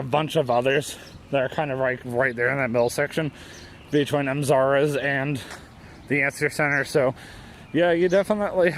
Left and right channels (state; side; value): identical; both; correlation 1.00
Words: bunch of others that are kind of like right there in that middle section between Mzara's and the Answer Center. So yeah, you definitely